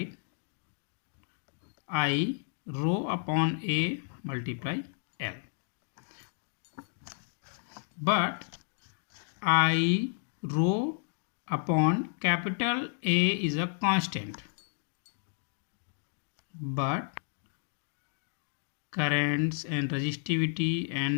I rho upon A multiply L, but I rho upon capital A is a constant, but currents and resistivity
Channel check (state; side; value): silent; right; 56 dB below the other